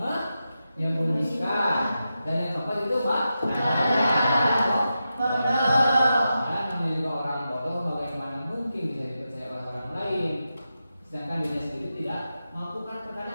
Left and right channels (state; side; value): inverted; both; correlation -0.90